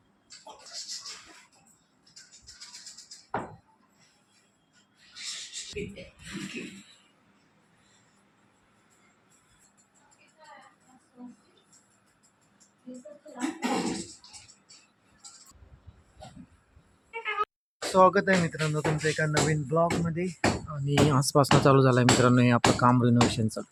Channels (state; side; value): identical; both; correlation 1.00